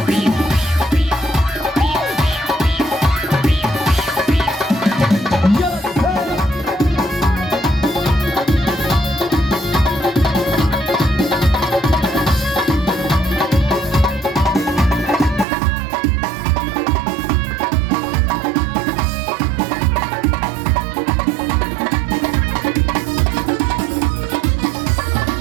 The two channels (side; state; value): left; drops out; at 15.5 s